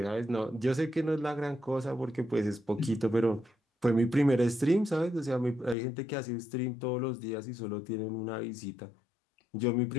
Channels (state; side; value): drops out; right; at 5.8 s